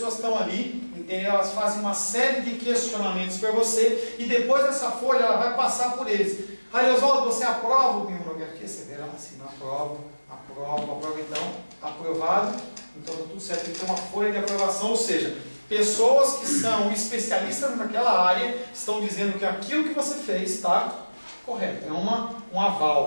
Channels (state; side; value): inverted; both; correlation -1.00